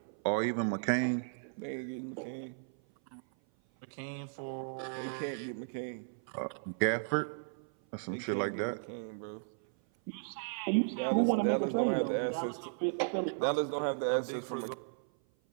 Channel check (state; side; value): silent; left; 54 dB below the other